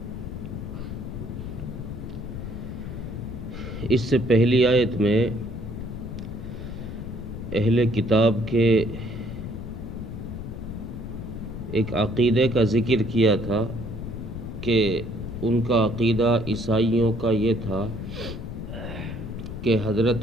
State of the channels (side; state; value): left; noise; rumble, 8 dB below the sound